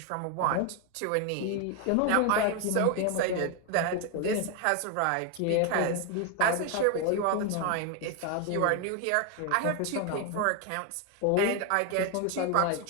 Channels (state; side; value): different; both; correlation 0.01